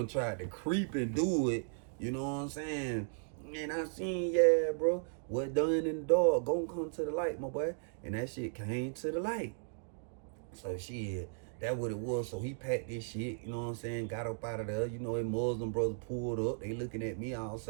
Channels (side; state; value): left; silent; digital silence